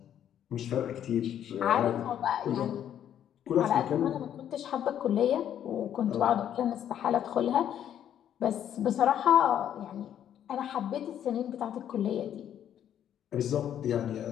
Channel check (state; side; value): quieter; right; 10.1 dB